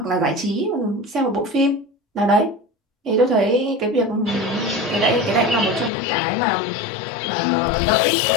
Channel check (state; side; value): drops out; right; at 5.9 s